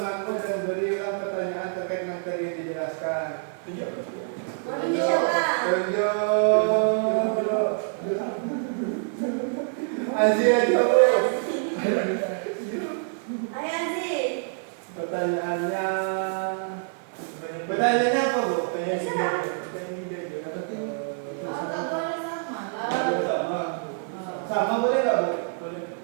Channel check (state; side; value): silent; left; digital silence